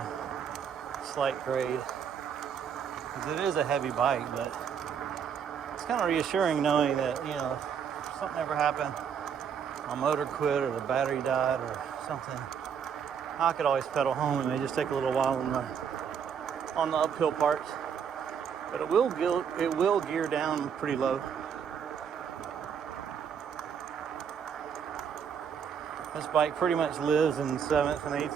slight grade, because it is a heavy bike. But it's kind of reassuring knowing that, if something ever happened, my motor quit or the battery died or something, I could always pedal home. It may just take a little while on the uphill parts, but it will gear down pretty low. This bike pretty much lives in 7th and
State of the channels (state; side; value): quieter; left; 7.5 dB